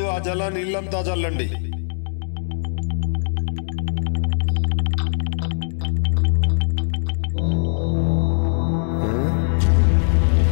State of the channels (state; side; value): silent; right; digital silence